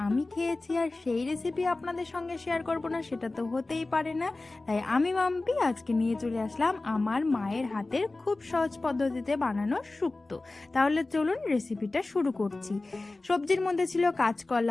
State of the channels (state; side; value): quieter; right; 3.2 dB